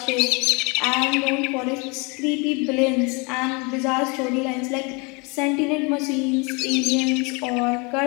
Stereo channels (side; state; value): right; quieter; 30.0 dB